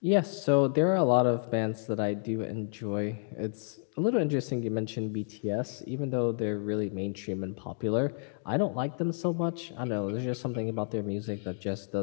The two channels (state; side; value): silent; right; digital silence